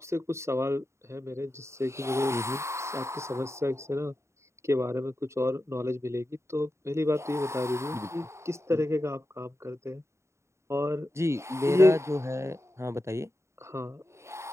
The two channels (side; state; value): left; late; 0.14 ms